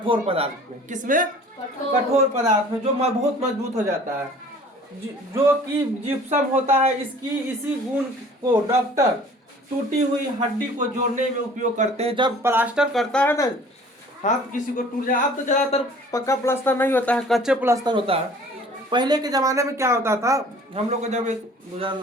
पदार्थ में। किसमें? कठोर पदार्थ में, जो बहुत मजबूत हो जाता है, जो कि जिप्सम होता है। इसी गुण को डॉक्टर टूटी हुई हड्डी को जोड़ने में उपयोग करते हैं। जब प्लास्टर करता है ना, हाथ किसी को टूट जाए, अब तो ज्यादातर पक्का प्लास्टर नहीं होता है, कच्चे प्लास्टर होता है। पहले के जमाने में क्या होता था, हम लोग को जब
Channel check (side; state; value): both; normal; correlation 0.49